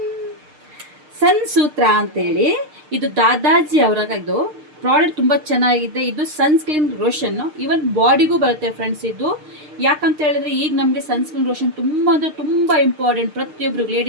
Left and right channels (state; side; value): late; left; 6.6 ms